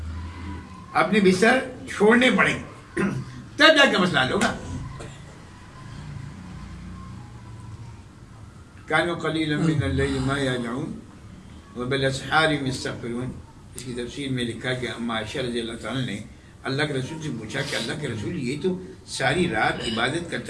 اپنے بستر چھوڑنے پڑیں گے تب جا کے مسئلہ حل ہوگا. كانوا قليلا من الليل ما يهجعون وبالاسحار هم يستغفرون. اس کی تفسیر میں لکھا کہ اما عائشہ رضی اللہ تعالیٰ نے اللہ کے رسول سے پوچھا کہ اللہ کے رسول یہ تو ساری رات عبادت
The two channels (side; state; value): both; identical; correlation 1.00